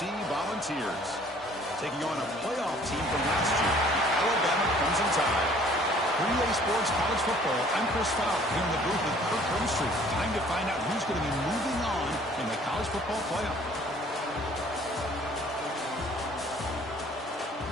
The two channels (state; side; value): normal; both; correlation 0.55